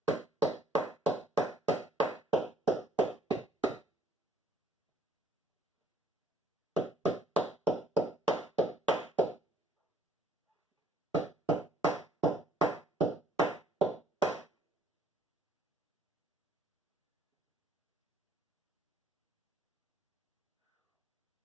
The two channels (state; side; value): normal; both; correlation 0.60